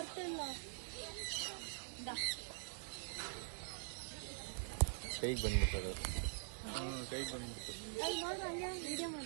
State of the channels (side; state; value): left; silent; digital silence